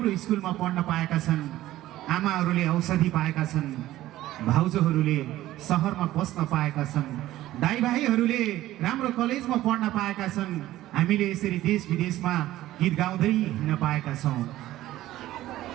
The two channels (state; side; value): quieter; left; 15.0 dB